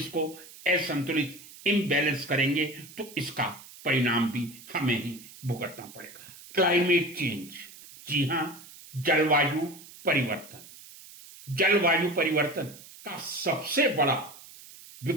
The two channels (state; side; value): noise; right; hiss, 19 dB below the sound